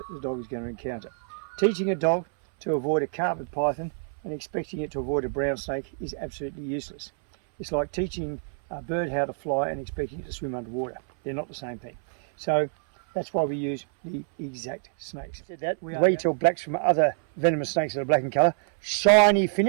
the dog is going to encounter. Teaching a dog to avoid a carpet python and expecting it to avoid a brown snake is absolutely useless. It's like teaching a bird how to fly and expecting it to swim underwater. They're not the same thing. So that's why we use the exact snakes. The way you tell blacks from other venomous snakes that are black in colour: shiny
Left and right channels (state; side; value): silent; left; 60 dB below the other